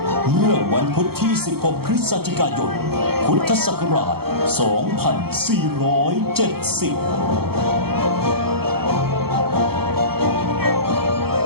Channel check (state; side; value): late; left; 0.95 ms